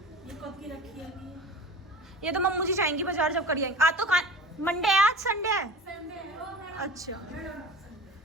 ये कब की रखी है? ये तो मम्मू जी जाएंगी बाजार जब करी आएंगी। आज तो मंडे है, आज संडे है। अच्छा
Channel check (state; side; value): normal; both; correlation 0.37